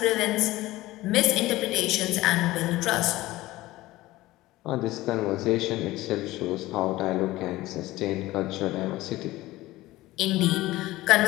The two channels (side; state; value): right; quieter; 17.8 dB